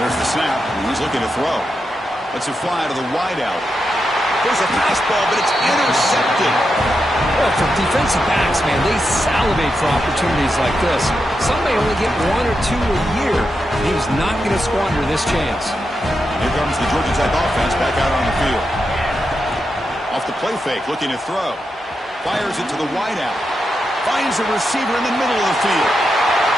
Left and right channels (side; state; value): both; normal; correlation 0.86